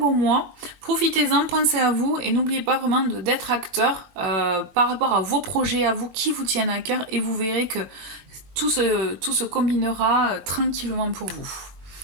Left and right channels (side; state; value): left; late; 21 ms